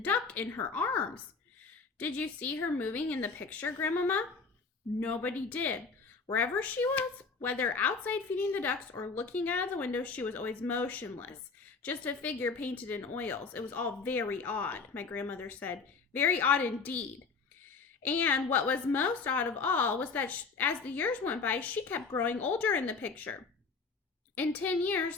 in her arms. Did you see her moving in the picture, Grandmama? Nobody did. Wherever she was, whether outside feeding the ducks or looking out of the window, she was always motionless, just a figure painted in oils. It was all very odd, my grandmother said. Very odd indeed. And what was most odd of all was that as the years went by, she kept growing older in the picture. In 10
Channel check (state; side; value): quieter; right; 4.7 dB